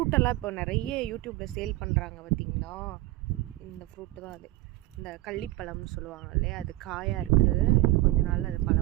இப்போ நிறைய யூடியூப்பில் சேல் பண்ணுறாங்க பார்த்தீங்களா. இந்த ஃப்ரூட்டு தான் அது, இந்த கள்ளிப்பழம்னு சொல்லுவாங்க இல்லையா. அது காயாக இருக்குது, இன்னும் கொஞ்ச நாள் அது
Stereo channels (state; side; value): quieter; left; 18.3 dB